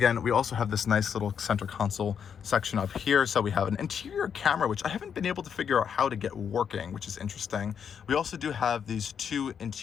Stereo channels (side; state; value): right; quieter; 7.5 dB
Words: we also have this nice little center console section up here. So we have an interior camera, which I haven't been able to figure out how to get working, which is interesting. We also do have these two